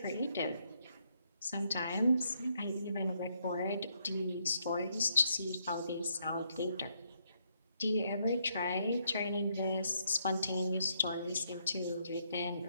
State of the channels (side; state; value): both; inverted; correlation -0.74